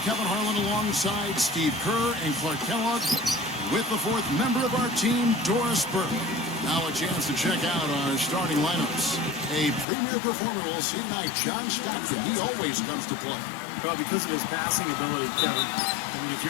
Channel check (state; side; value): drops out; right; at 9.9 s